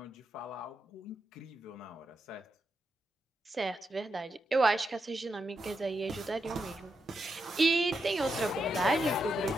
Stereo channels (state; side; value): normal; both; correlation 0.85